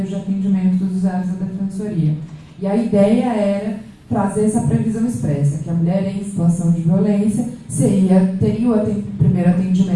de atendimento dos usuários da Defensoria. E a ideia era trazer essa previsão expressa, que a mulher em situação de violência teria o primeiro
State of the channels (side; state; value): both; identical; correlation 1.00